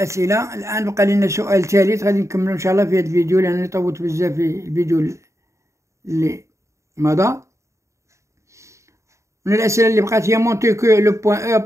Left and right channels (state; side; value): late; left; 0.14 ms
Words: الآن بقى لنا سؤال ثالث غادي نكملو إن شاء الله في هذا الفيديو، لأنني طولت بزاف في الفيديو اللي مضى. من الأسئلة اللي بقات هي مونتي كو لو بوان أو